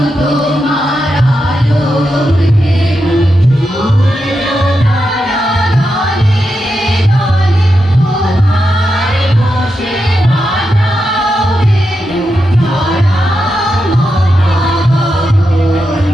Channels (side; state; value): both; normal; correlation 0.87